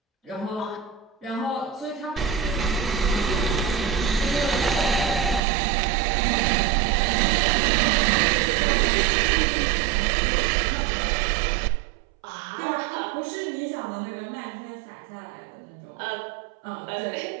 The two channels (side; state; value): left; drops out; at 5.4 s